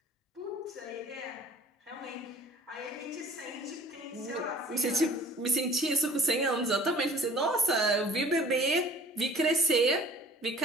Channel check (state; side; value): normal; both; correlation 0.49